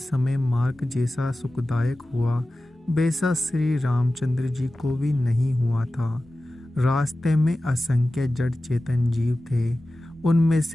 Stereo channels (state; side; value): normal; both; correlation 0.95